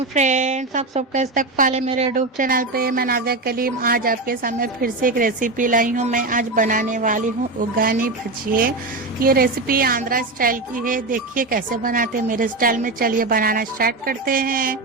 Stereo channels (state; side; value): quieter; left; 3.2 dB